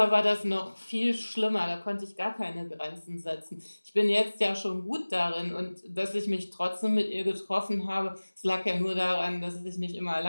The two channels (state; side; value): inverted; both; correlation -1.00